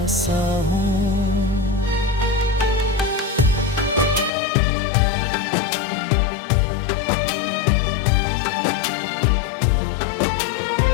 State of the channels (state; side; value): drops out; right; at 4.3 s